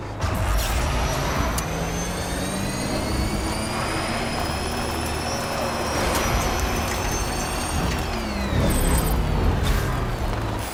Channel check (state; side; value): identical; both; correlation 1.00